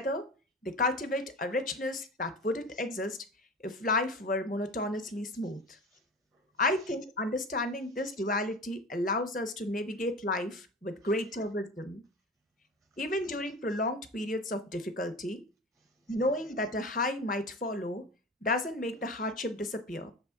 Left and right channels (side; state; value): both; normal; correlation 0.33